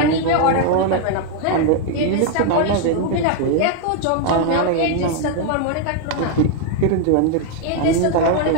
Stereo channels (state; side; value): different; both; correlation 0.00